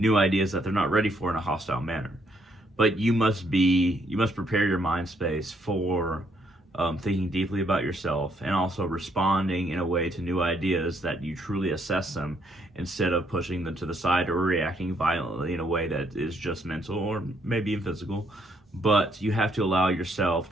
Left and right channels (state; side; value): normal; both; correlation 0.71